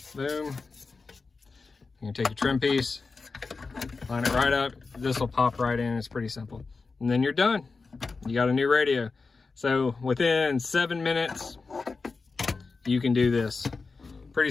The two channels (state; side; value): quieter; right; 4.3 dB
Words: Boom. You're gonna take your trim piece, line it right up. This will pop right in. It's pretty simple. And then you're done. You got a new radio. So within 7 minutes, you can do this. Pretty